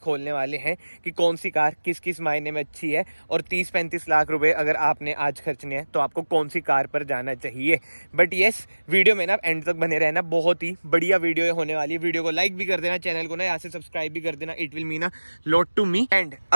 खोलने वाले हैं कि कौन सी कार किस किस मायने में अच्छी है, और 30-35 लाख रुपए अगर आपने आज खर्चने हैं तो आपको कौन सी कार पर जाना चाहिए। बट यस, वीडियो में ना एंड तक बने रहना, बहुत ही बढ़िया वीडियो होने वाली है। वीडियो को लाइक भी कर देना, चैनल को ना यहाँ से सब्सक्राइब भी कर देना, it will mean a lot to me. And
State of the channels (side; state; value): both; inverted; correlation -1.00